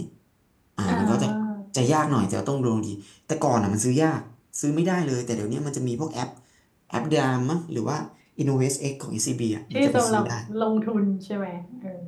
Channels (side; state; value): both; identical; correlation 1.00